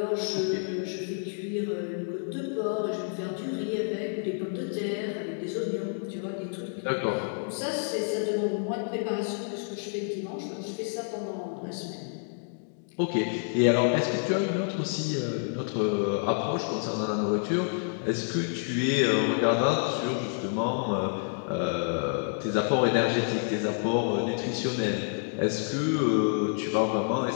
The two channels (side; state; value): right; silent; 59 dB below the other